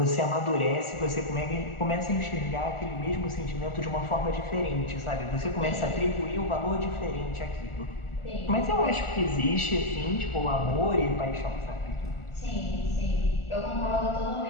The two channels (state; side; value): late; right; 1.4 ms